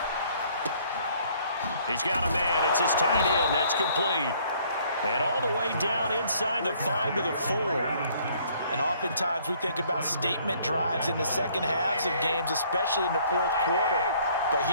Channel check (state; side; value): inverted; both; correlation -0.61